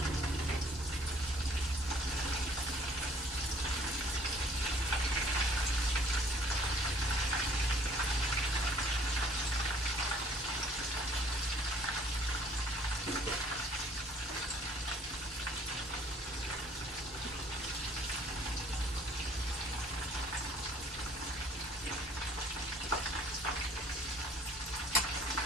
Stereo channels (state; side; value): normal; both; correlation 0.57